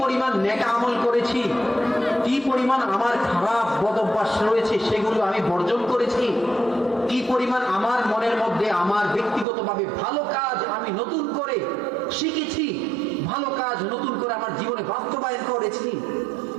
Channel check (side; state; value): left; drops out; at 9.5 s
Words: পরিমাণ নেক আমল করেছি, কি পরিমাণ আমার খারাপ বদ অভ্যাস রয়েছে সেগুলো আমি বর্জন করেছি, কি পরিমাণ আমার মনের মধ্যে আমার ব্যক্তিগতভাবে ভালো কাজ আমি নতুন করে শিখেছি, ভালো কাজ নতুন করে আমার জীবনে বাস্তবায়ন করেছি,